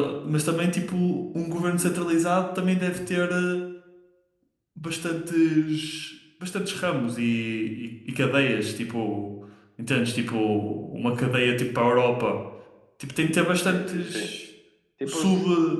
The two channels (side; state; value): both; identical; correlation 1.00